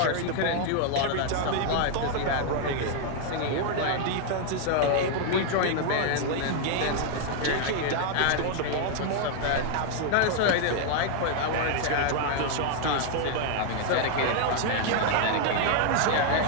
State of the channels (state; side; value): different; both; correlation 0.00